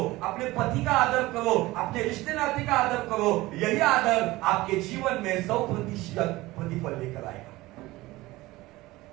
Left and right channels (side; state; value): left; quieter; 19.2 dB